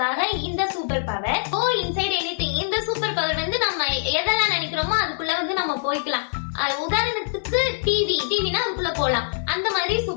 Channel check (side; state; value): right; silent; digital silence